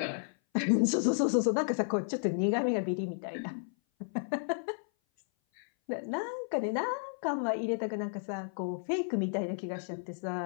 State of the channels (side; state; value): right; silent; 56 dB below the other